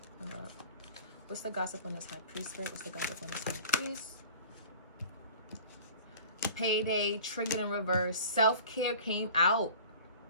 What's the gossip on this high priest? Spirit, what's the gossip on this high priest? Payday, triggered in reverse. Self-care came out.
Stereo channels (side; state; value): both; inverted; correlation -0.43